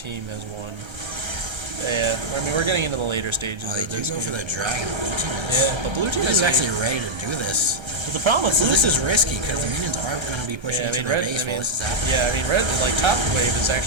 has 1. Yeah, I mean, we're getting into the later stages. They do go for the dragon. But blue team is actually ready to do this. But the problem with this is risky because the minions are going to be pushing into the base while this is happening. Yeah, I mean, red top wave is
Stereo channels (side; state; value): left; late; 1.3 ms